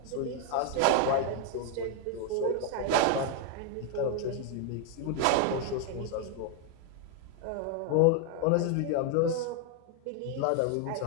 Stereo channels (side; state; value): both; different; correlation 0.00